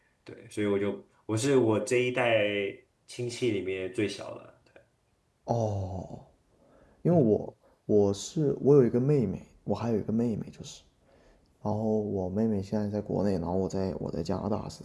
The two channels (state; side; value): identical; both; correlation 1.00